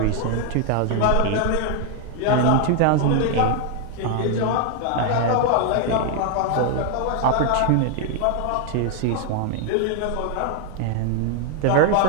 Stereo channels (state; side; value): different; both; correlation 0.00